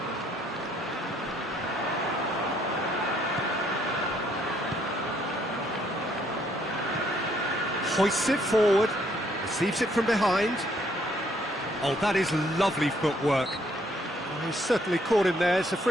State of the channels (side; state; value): both; normal; correlation 0.68